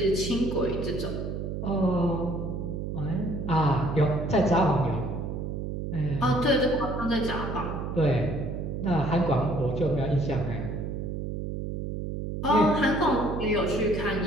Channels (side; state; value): right; noise; hum, 4 dB below the sound